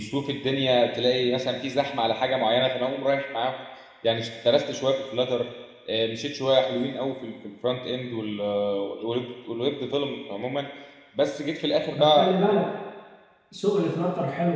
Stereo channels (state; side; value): identical; both; correlation 1.00